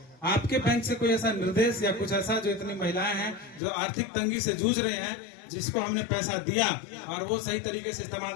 आपके बैंक से कोई ऐसा निर्देश या कुछ ऐसा, जो इतनी महिलाएं हैं जो आर्थिक तंगी से जूझ रहे हैं, जिसको हमने पैसा दिया और वो सही तरीके से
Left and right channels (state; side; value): drops out; right; at 3.6 s